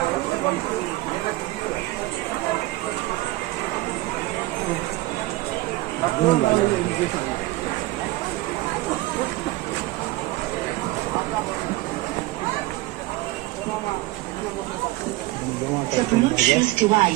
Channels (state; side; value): quieter; left; 18.6 dB